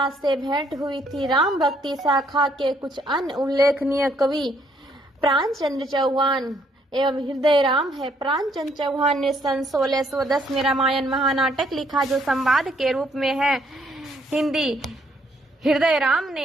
से भेंट हुई थी। राम भक्ति शाखा के कुछ अन्य उल्लेखनीय कवि प्राणचंद्र चौहान एवं हृदय राम है। प्राणचंद्र चौहान ने सन 1610 में रामायण महानाटक लिखा, जो संवाद के रूप में है हिंदी। हृदय राम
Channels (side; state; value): both; normal; correlation 0.69